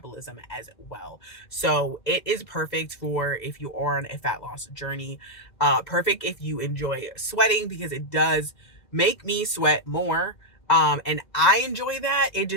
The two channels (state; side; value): late; right; 2.0 ms